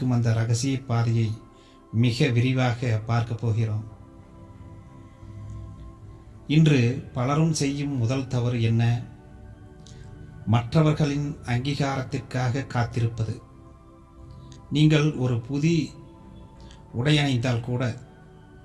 அந்த இரகசிய பாதையை மிக விரிவாக பார்க்க போகிறோம். இன்று பலரும் செய்யும் முதல் தவறு என்ன? மற்றவர்களின் அங்கீகாரத்திற்காக காத்திருப்பது. நீங்கள் ஒரு புதிய உடையணிந்தால் கூட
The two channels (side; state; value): both; identical; correlation 1.00